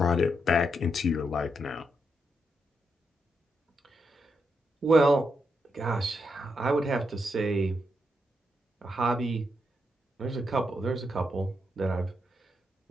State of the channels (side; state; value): both; normal; correlation 0.82